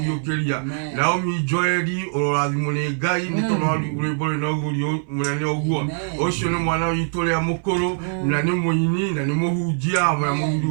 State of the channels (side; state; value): left; silent; 64 dB below the other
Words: na omi Joeli ororathimo ni Ngai ni tondu wa rwimbo no gurio munene oguo ucio ni mwana witu ria mukuru na ni muini na ni muhunjia wa